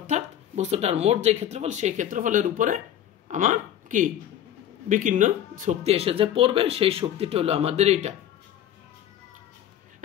বস্তুটার মোট যে ক্ষেত্রফল সেই ক্ষেত্রফলের উপরে আমার কি বিকীর্ণ শক্তি এসে যে পড়বে সেই শক্তিটা হলো আমাদের এইটা।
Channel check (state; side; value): quieter; right; 10.9 dB